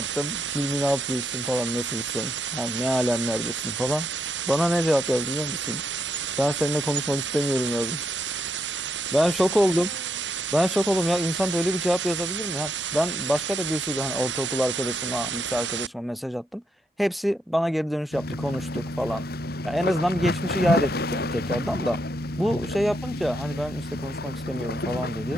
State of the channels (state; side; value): normal; both; correlation 0.79